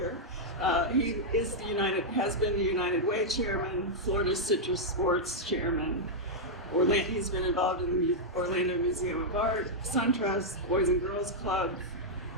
He is has been the United Way chairman, Florida Citrus Sports chairman. He's been involved in the Orlando Museum of Art, SunTrust, Boys and Girls Club,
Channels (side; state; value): both; normal; correlation -0.06